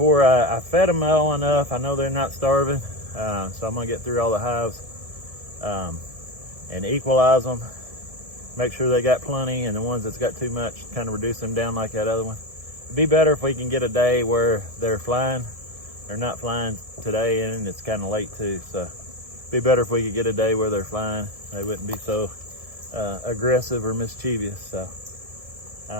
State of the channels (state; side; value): late; left; 1.7 ms